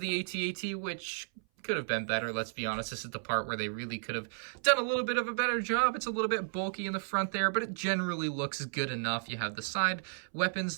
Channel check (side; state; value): left; silent; 56 dB below the other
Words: the AT-AT, which could have been better, let's be honest. This is the part where they really could have done a little bit of a better job. It's a little bit bulky in the front there, but it generally looks good enough. You have the side weapons